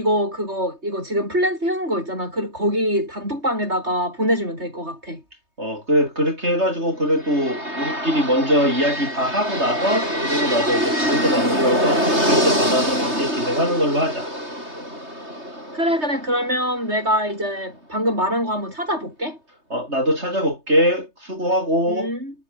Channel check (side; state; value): left; late; 3.3 ms